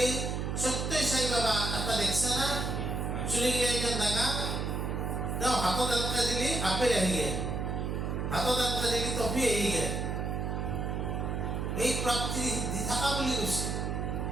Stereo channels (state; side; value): noise; right; hum, 2 dB below the sound